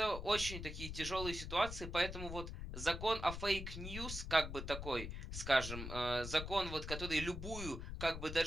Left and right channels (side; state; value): left; noise; rumble, 7 dB below the sound